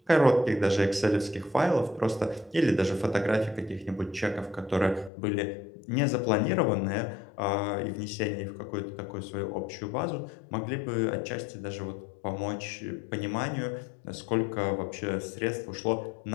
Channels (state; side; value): drops out; right; at 5.1 s